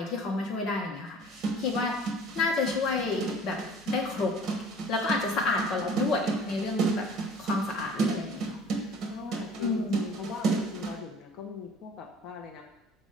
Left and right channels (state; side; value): normal; both; correlation 0.48